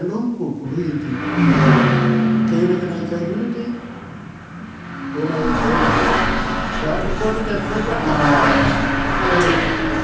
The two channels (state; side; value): identical; both; correlation 1.00